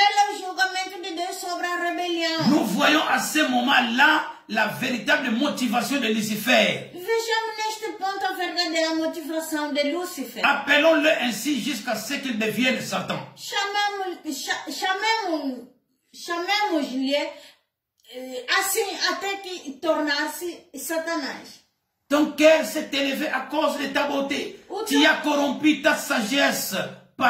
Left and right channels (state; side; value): identical; both; correlation 1.00